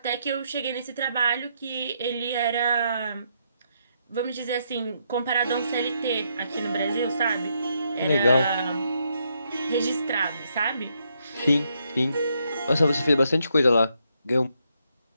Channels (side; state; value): both; inverted; correlation -0.77